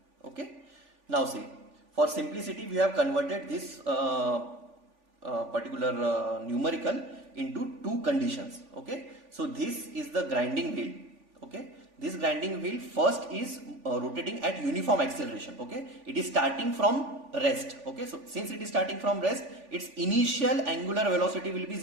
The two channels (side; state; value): left; late; 3.5 ms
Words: Okay, now see, for simplicity we have converted this particular numerical into two conditions. Okay, so this is the grinding wheel. Okay, this grinding wheel first is rotating at uniform acceleration. Okay, it is starting from rest. Okay, so since it is starting from rest, its initial angular velocity will be